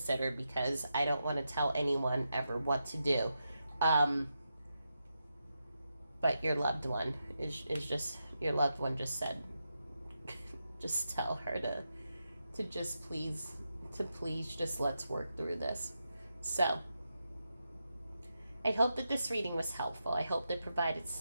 because I don't want to tell anyone ever what to do. But your loved one is just, your loved one just said, just tell her to just please, just let's work through this. So I hope that this reading was helpful. I hope that provided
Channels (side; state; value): both; inverted; correlation -0.87